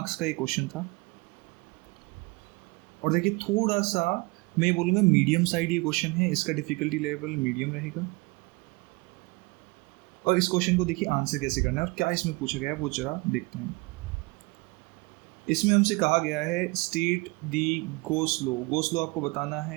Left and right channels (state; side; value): quieter; left; 26.5 dB